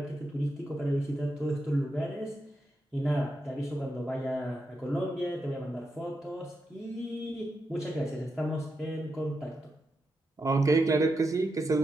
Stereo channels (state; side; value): normal; both; correlation 0.86